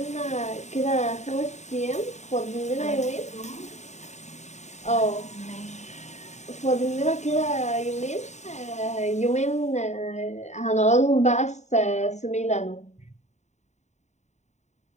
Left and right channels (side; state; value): right; late; 0.34 ms